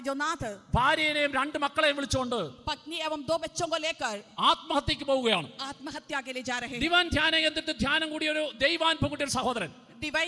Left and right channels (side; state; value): both; identical; correlation 1.00